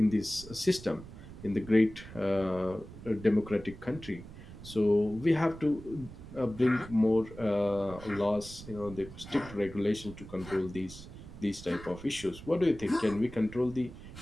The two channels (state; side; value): noise; right; rumble, 15 dB below the sound